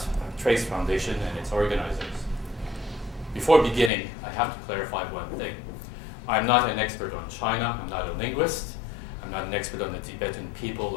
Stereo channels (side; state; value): right; drops out; at 3.9 s